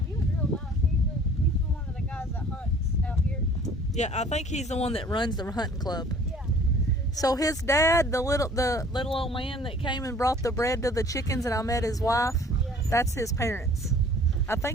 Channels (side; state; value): both; normal; correlation 0.51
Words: he was real nice. He's one of the guys that hunts out here. Yeah, I think he's the one that runs the hunting club. Yeah. So his dad, the little old man that came and brought the bread to the chickens, and I met his wife. Yeah. That's his parents. I